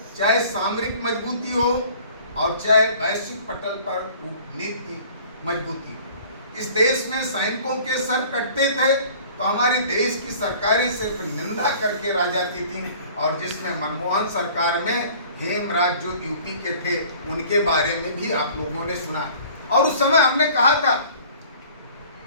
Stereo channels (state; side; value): inverted; both; correlation -0.49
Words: चाहे सामरिक मजबूती हो और चाहे वैश्विक पटल पर कूटनीति मजबूती हो। इस देश में सैनिकों के सर कटते थे तो हमारे देश की सरकारें सिर्फ निंदा करके रह जाती थीं। और जिसमें मनमोहन सरकार में हेमराज जो यूपी के थे, उनके बारे में भी आप लोगों ने सुना। और उस समय हमने कहा था